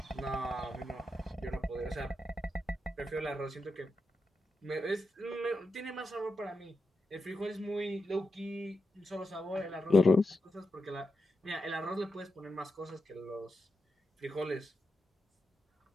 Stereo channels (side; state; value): both; normal; correlation 0.87